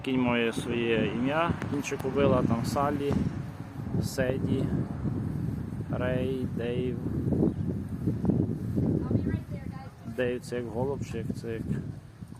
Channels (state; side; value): identical; both; correlation 1.00